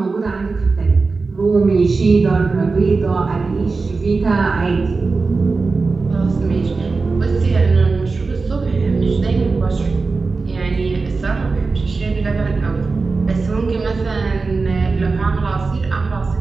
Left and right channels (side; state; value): left; quieter; 4.1 dB